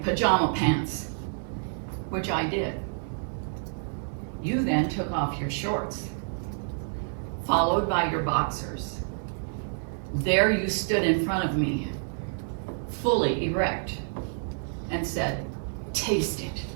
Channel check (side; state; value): left; silent; digital silence